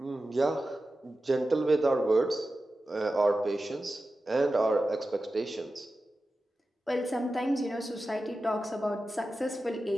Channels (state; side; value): normal; both; correlation 0.93